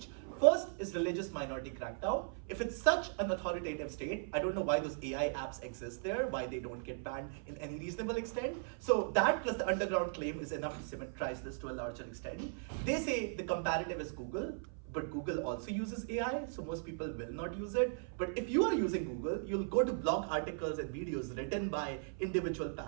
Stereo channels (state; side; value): silent; left; 53 dB below the other